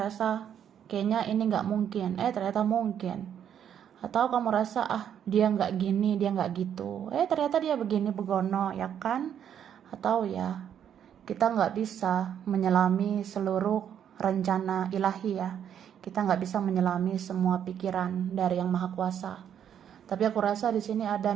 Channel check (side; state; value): left; quieter; 9.1 dB